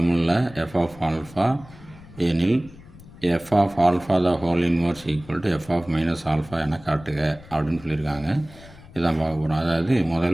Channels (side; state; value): left; noise; rumble, 20 dB below the sound